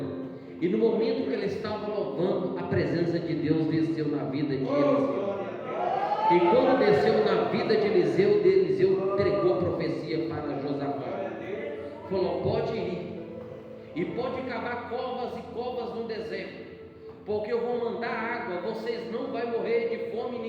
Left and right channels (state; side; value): identical; both; correlation 1.00